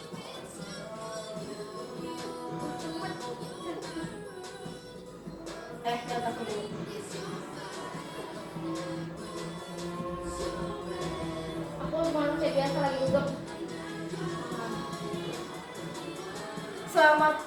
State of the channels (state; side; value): identical; both; correlation 1.00